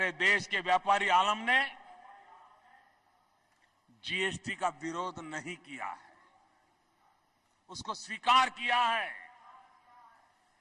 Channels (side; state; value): both; identical; correlation 1.00